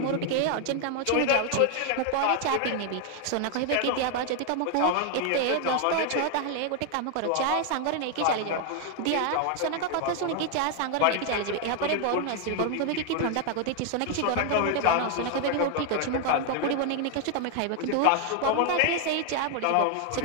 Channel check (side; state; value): both; different; correlation 0.00